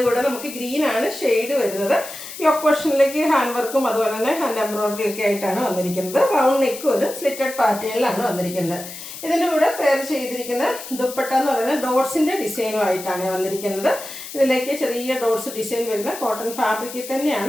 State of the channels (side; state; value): left; noise; hiss, 12 dB below the sound